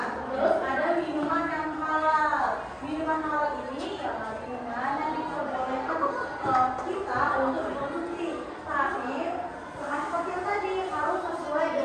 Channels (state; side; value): identical; both; correlation 1.00